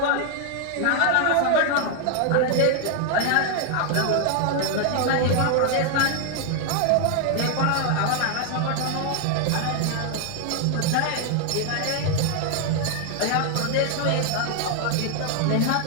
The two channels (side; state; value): both; different; correlation 0.00